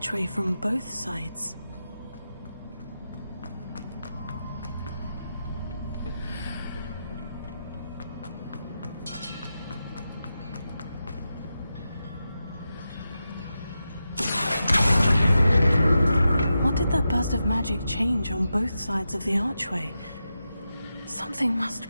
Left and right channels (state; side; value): inverted; both; correlation -0.89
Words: from both sides. What did that burst of magic change on both sides of the archway? Something must